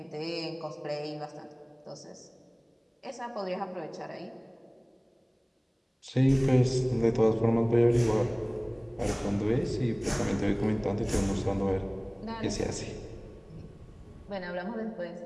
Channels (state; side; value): identical; both; correlation 1.00